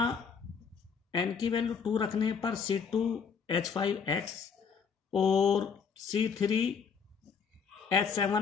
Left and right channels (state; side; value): quieter; right; 6.2 dB